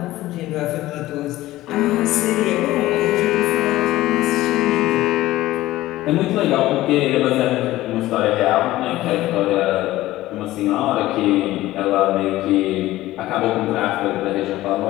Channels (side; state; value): right; quieter; 16.3 dB